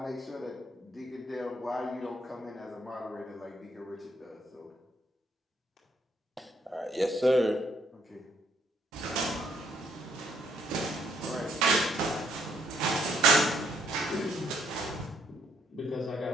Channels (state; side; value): normal; both; correlation 0.70